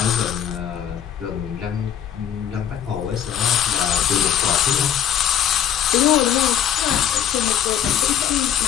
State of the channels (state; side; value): quieter; right; 9.6 dB